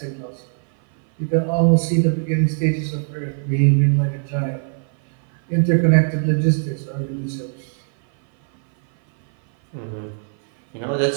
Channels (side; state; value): left; silent; 58 dB below the other